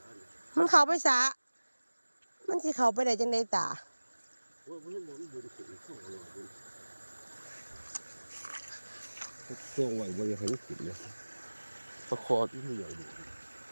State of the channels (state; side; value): inverted; both; correlation -1.00